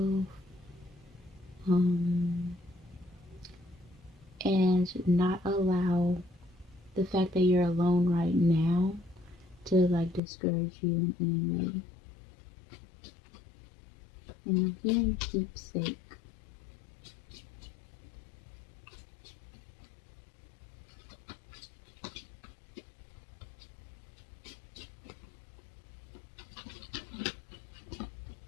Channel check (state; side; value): drops out; right; at 10.2 s